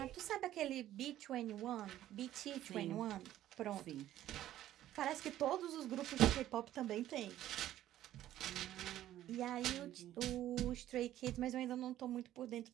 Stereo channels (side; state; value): left; quieter; 13.0 dB